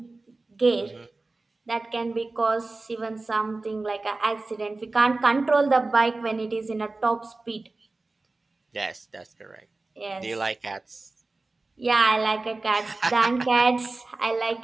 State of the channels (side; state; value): left; quieter; 3.3 dB